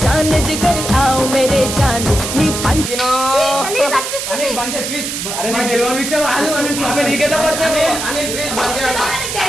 जान जिगर आओ मेरे जान नी पंच ప్లీజ్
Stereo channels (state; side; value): noise; right; hiss, 4 dB below the sound